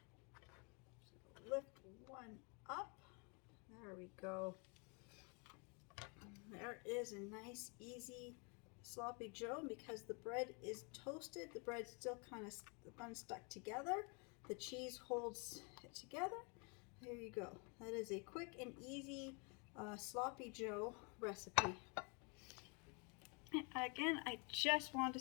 So lift one up. There we go. There is a nice, easy Sloppy Joe. Because the bread is toasted, the bread's still kind of unstuck together. The cheese holds it together. There you go. That is a quick and easy Sloppy Joe recipe. And again, I just want to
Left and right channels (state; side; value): quieter; right; 33.9 dB